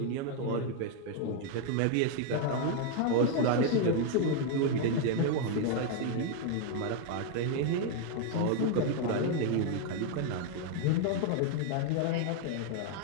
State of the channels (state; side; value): different; both; correlation 0.00